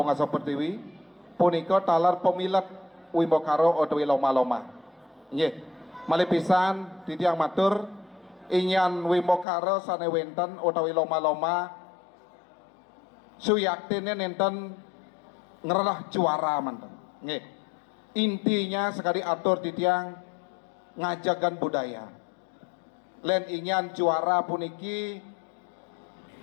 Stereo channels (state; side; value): drops out; right; at 9.5 s